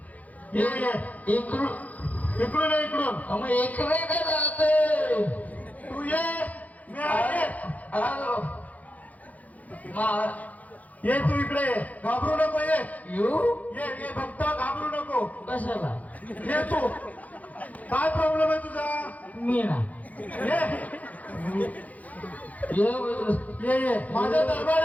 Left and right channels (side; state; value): right; late; 0.076 ms